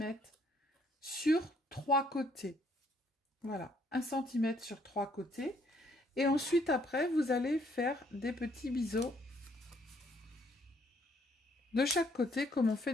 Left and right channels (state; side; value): normal; both; correlation 0.67